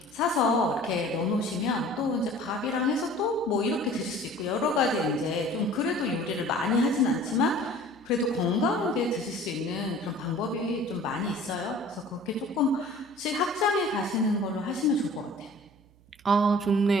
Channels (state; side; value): noise; right; hum, 28 dB below the sound